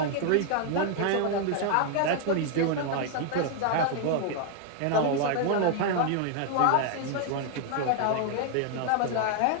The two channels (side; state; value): both; different; correlation 0.00